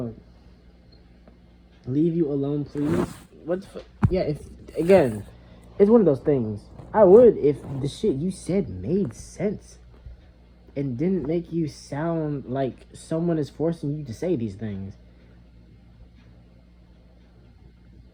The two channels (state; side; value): identical; both; correlation 1.00